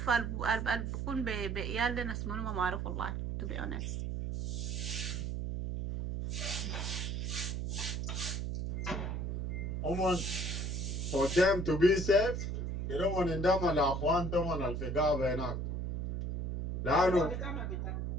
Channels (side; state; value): right; noise; hum, 2 dB below the sound